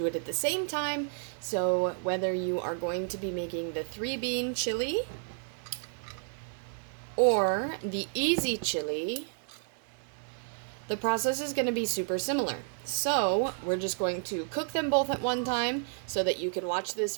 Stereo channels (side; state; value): left; silent; 57 dB below the other